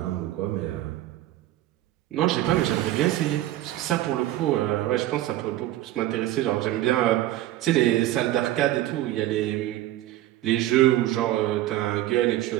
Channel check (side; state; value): left; quieter; 14.7 dB